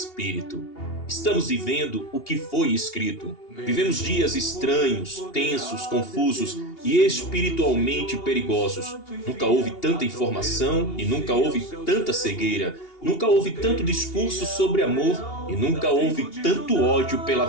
Estamos vivendo o que foi escrito. Vivemos dias estranhos, tensos, confusos e espiritualmente perigosos. Nunca houve tanta informação e nunca houve tanta cegueira. Nunca houve tanto discurso sobre amor e nunca houve tanto ódio pela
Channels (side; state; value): right; late; 2.8 ms